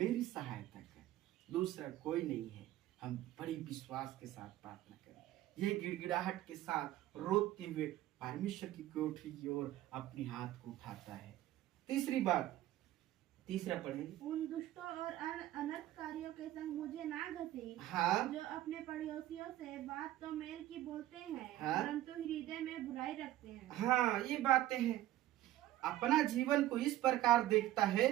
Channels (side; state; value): left; quieter; 14.5 dB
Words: सहायता कर, दूसरा कोई नहीं है। हम बड़ी विश्वास के साथ प्रार्थना करें, ये गिड़गिड़ाहट के साथ रोते हुए परमेश्वर की कोठरी की ओर अपनी हाथ को उठाता है। तीसरी बात, तीसरा पढ़ेंगे, उन दुष्टों और अनर्थकारियों के संग मुझे ना घसी, हाँ, जो अपने पड़ोसियों से बात तो मेल की बोलते हैं, हाँ, परंतु हृदय में बुराई रखते हैं। हाँ, ये बातें हैं। अपना जीवन को इस प्रकार देखता है